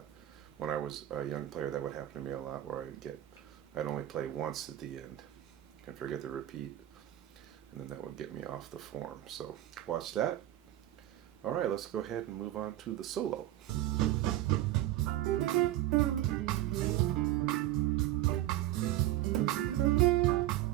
when I was a young player, that would happen to me a lot, where I'd only play once at the end and forget the repeat, and then that would get me off the form. So watch that. All right, let's go ahead and move on to the solo.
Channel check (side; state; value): left; quieter; 14.1 dB